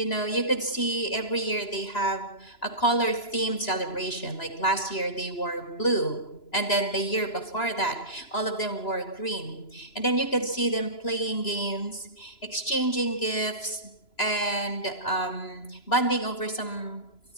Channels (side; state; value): right; late; 2.9 ms